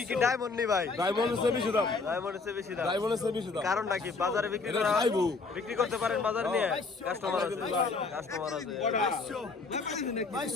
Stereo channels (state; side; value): quieter; right; 4.1 dB